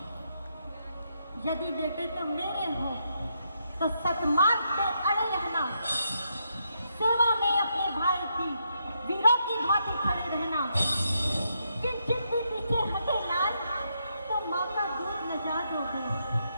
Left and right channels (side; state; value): both; inverted; correlation -0.79